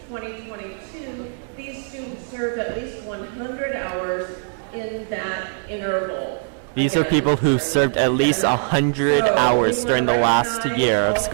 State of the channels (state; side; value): silent; left; digital silence